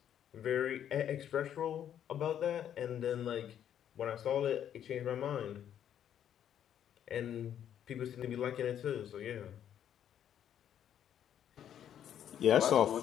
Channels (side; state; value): right; quieter; 9.9 dB